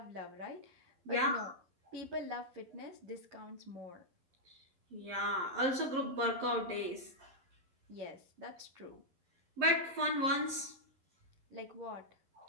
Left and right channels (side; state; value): left; late; 11 ms